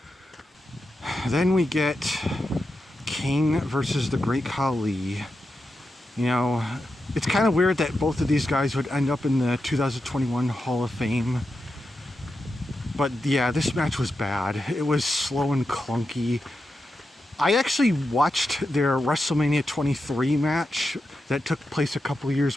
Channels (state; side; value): normal; both; correlation 0.88